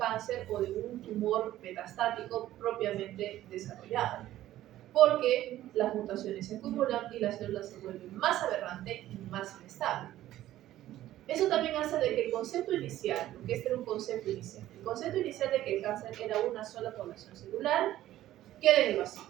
o de un tumor metastático propiamente desarrollado, porque las mutaciones se acumulan y las células se vuelven más aberrantes y más inestables. Eso también hace de que el concepto inicial, porque este era un concepto inicial, el concepto inicial de que el cáncer era una sola población celular, quede en el vacío.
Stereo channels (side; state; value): left; quieter; 13.9 dB